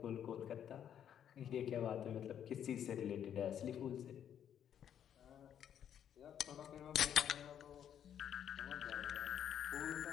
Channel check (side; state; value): right; quieter; 9.4 dB